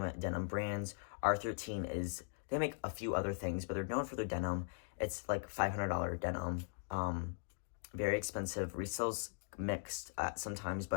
denim brands. R13 they make a few other things, but they're known for their denim. It's like $500 denim. Very expensive. Resales mixed sometimes,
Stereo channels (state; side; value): silent; right; digital silence